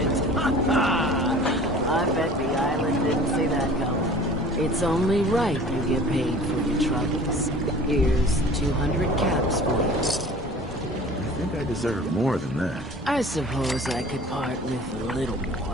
I bet the island didn't see that coming. It's only right you get paid for your troubles. Here's 200 caps for you. I think I deserve more than that. I suppose I could part with a little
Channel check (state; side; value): normal; both; correlation 0.45